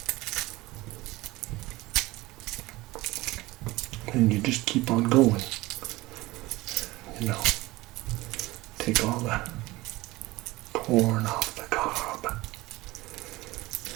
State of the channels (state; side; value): quieter; left; 20.0 dB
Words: And you just keep on going, you know, take all the corn off the cob.